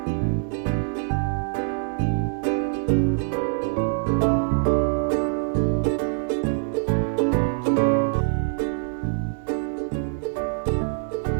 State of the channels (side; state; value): left; silent; 62 dB below the other